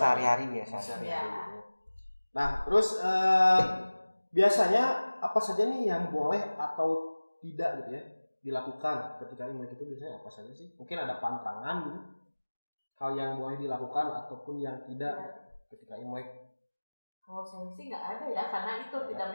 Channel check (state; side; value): inverted; both; correlation -1.00